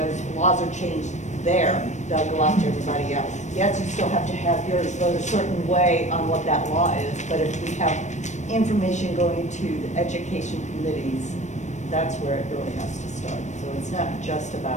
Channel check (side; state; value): right; late; 0.34 ms